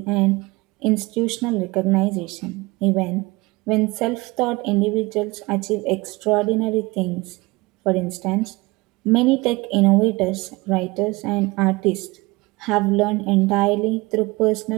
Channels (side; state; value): left; quieter; 23.2 dB